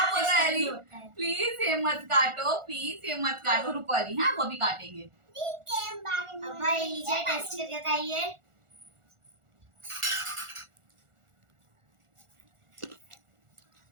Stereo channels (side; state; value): left; late; 1.4 ms